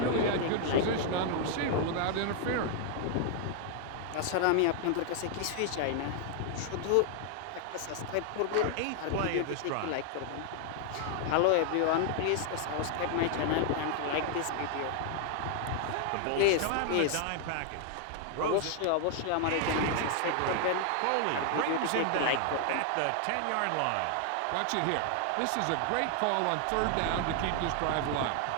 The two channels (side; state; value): both; different; correlation 0.00